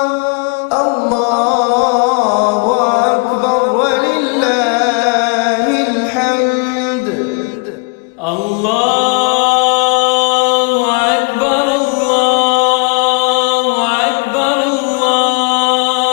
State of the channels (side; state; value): right; quieter; 32.1 dB